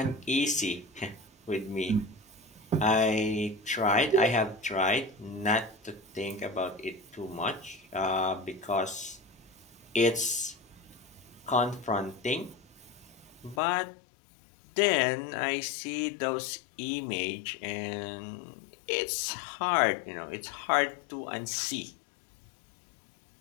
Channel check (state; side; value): drops out; right; at 13.6 s